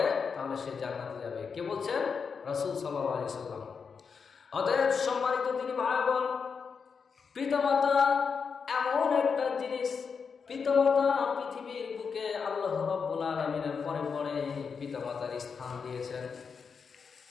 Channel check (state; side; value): quieter; right; 5.8 dB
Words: তাহলে সে জান্নাতে যাবে। কে বলছেন? রাসূল সাল্লাল্লাহু আলাইহি ওয়াসাল্লাম। অতএব সম্মানিত দিনী ভাই বোন, পিতামাতা এমন একটা জিনিস, পিতামাতা পৃথিবীর বুকে আল্লাহ রাব্বুল আলামিনের পরে পরে পিতামাতার স্থান দিয়েছেন।